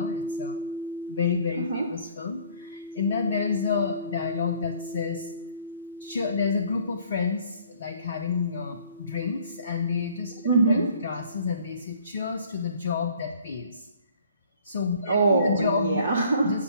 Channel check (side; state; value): both; inverted; correlation -0.56